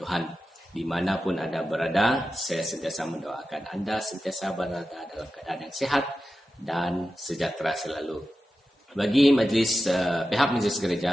Dimanapun Anda berada, saya sentiasa mendoakan Anda sentiasa berada dalam keadaan yang sehat dan sejahtera selalu. Bagi pihak majlis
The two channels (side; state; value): both; normal; correlation 0.92